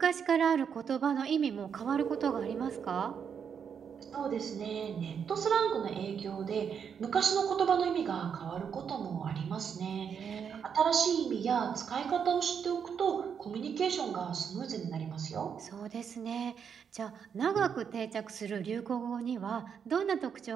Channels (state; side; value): quieter; left; 7.2 dB